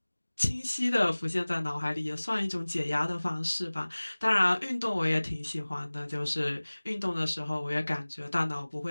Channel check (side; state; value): both; inverted; correlation -1.00